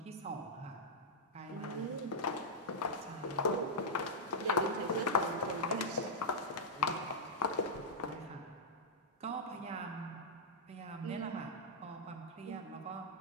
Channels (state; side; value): normal; both; correlation -0.08